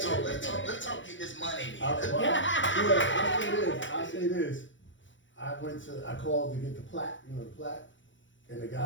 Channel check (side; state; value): right; late; 0.55 ms